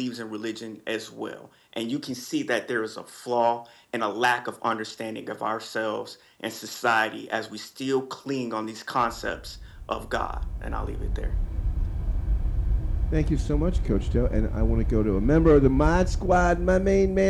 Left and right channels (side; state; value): both; identical; correlation 1.00